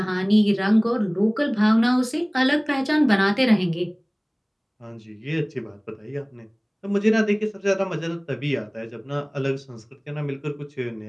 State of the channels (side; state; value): both; identical; correlation 1.00